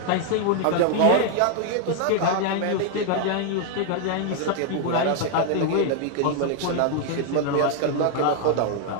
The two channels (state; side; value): different; both; correlation 0.00